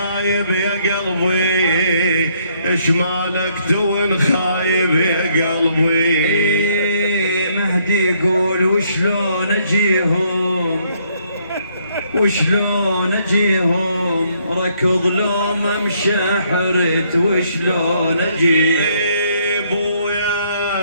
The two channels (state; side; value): inverted; both; correlation -0.70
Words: يا قلبي ايش مالك تون خايب يا قلبي. مهدي يقول وشلون اجيهم ركض لو ما مشى حرت وشلون اجيهم.